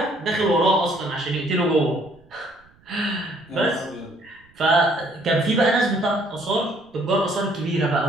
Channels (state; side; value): noise; right; rumble, 30 dB below the sound